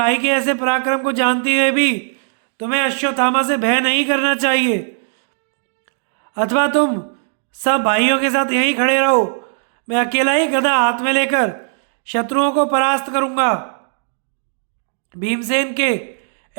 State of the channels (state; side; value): silent; left; digital silence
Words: के ऐसे पराक्रम को जानते हुए भी तुम्हें अश्वत्थामा से भय नहीं करना चाहिए, अथवा तुम सब भाइयों के साथ यहीं खड़े रहो। मैं अकेला ही गदा हाथ में लेकर शत्रुओं को परास्त करूंगा। भीमसेन के